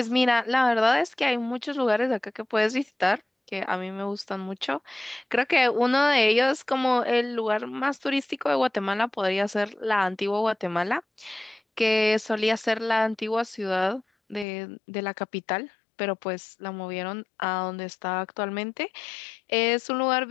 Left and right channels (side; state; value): right; drops out; at 14.5 s